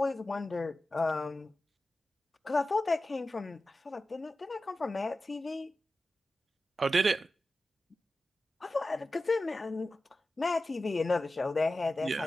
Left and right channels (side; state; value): both; normal; correlation 0.93